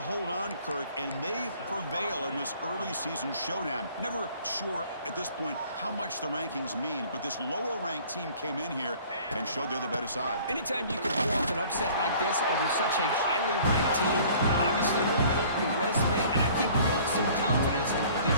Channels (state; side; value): inverted; both; correlation -0.52